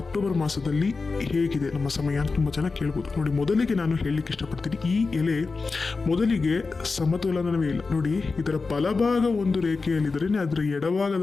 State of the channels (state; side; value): quieter; right; 4.2 dB